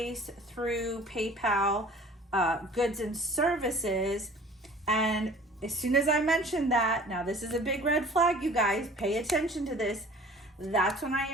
through PayPal, goods and services. And as soon as I mentioned that, now this is a big red flag, you guys, pay attention to this. That's when I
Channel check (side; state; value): both; normal; correlation 0.47